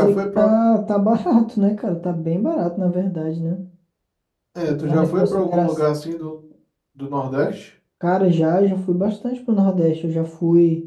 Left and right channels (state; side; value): identical; both; correlation 1.00